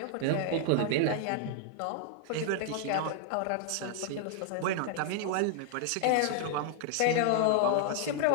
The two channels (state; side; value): different; both; correlation 0.00